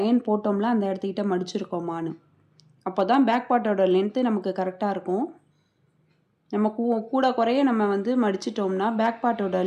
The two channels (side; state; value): both; identical; correlation 1.00